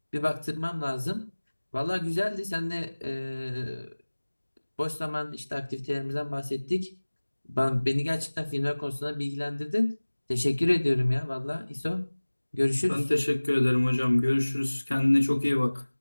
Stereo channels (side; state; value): both; inverted; correlation -1.00